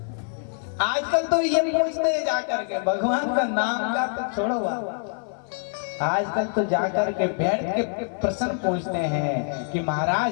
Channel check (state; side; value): silent; right; 59 dB below the other